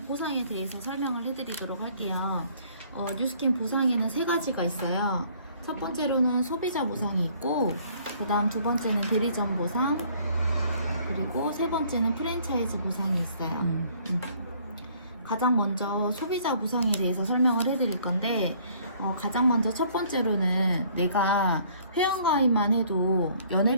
보상에 대해서 설명을 해드리도록 할게요. 뉴스킨 보상에는 세 가지가 있어요. 첫 번째로는 소비자 보상이 있고, 그 다음 두 번째는 대리점 보상, 그리고 세 번째는 프랜차이즈 보상이 있어요. 가장 먼저 소비자 보상에 대해서 설명을 해드릴 건데, 가장 먼저 첫 번째로는 내가 회원가입만 해도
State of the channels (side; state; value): both; inverted; correlation -0.59